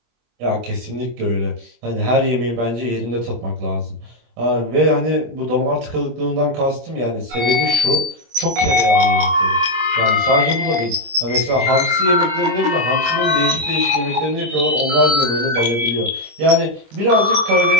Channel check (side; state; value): left; late; 26 ms